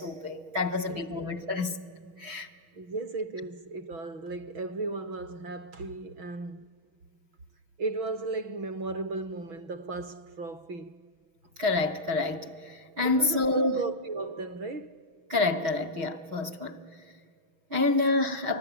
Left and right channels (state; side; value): late; left; 6.2 ms